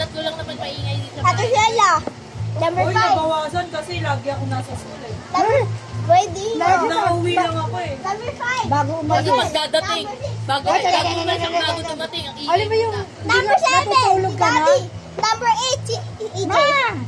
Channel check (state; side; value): identical; both; correlation 1.00